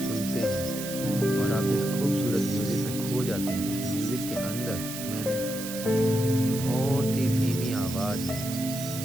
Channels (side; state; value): right; noise; hiss, 8 dB below the sound